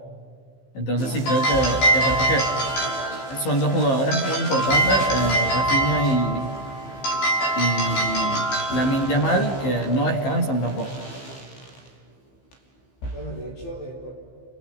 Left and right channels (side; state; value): right; late; 15 ms